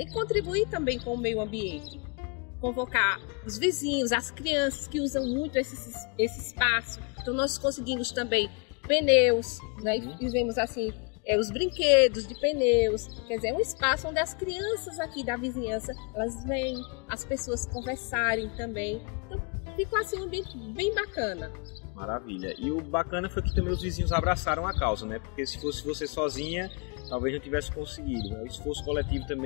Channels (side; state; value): right; quieter; 34.3 dB